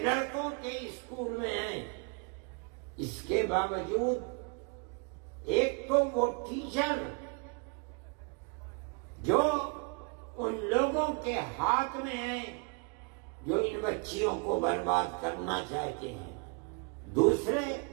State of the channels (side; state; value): left; quieter; 34.8 dB